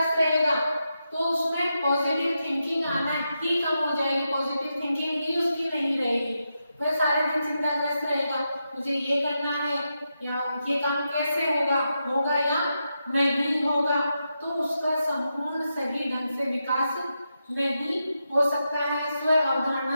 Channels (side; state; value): both; inverted; correlation -0.86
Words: रहेगा तो उसमें पॉजिटिव थिंकिंग आना ही कम हो जाएगी, पॉजिटिव थिंकिंग ही उसकी नहीं रहेगी। वह सारे दिन चिंताग्रस्त रहेगा, मुझे ये करना है या ये काम कैसे होगा या नहीं होगा, तो उसका संपूर्ण सही ढंग से विकास नहीं हो सकता है, स्व